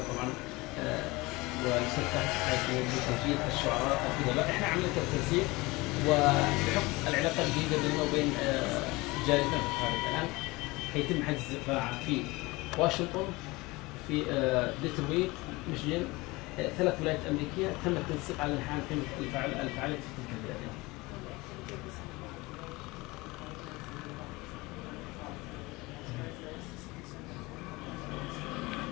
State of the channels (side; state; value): right; quieter; 22.6 dB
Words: طبعا والاستاذ فهد بتسجيل الشعراء الادباء، احنا عملنا التنسيق وبحكم العلاقه الجيده بيننا وبين جاليتنا في الخارج. الان حيتم حجز قاعه في واشنطن، في ديترويت، ميشيغان، 3 ولايات امريكيه، تم التنسيق على ان نقيم الفعاليات في تلك البلاد.